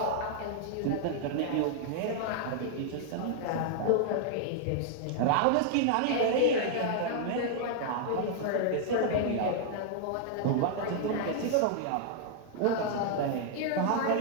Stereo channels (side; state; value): both; different; correlation -0.01